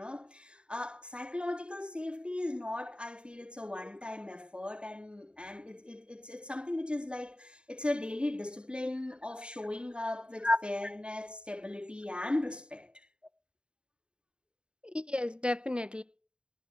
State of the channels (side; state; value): left; late; 0.052 ms